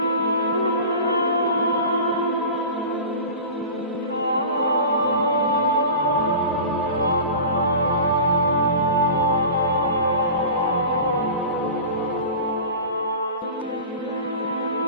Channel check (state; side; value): inverted; both; correlation -0.34